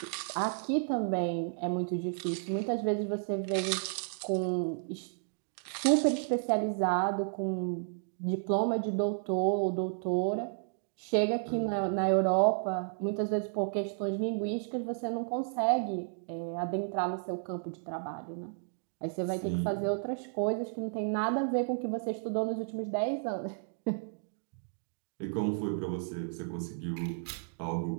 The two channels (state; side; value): silent; left; digital silence